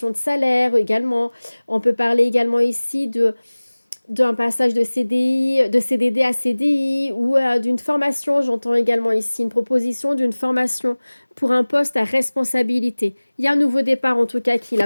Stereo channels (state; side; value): inverted; both; correlation -1.00